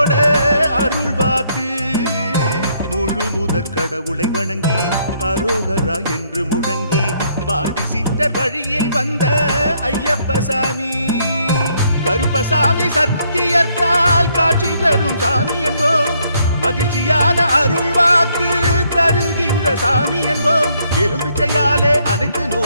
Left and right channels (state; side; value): inverted; both; correlation -0.70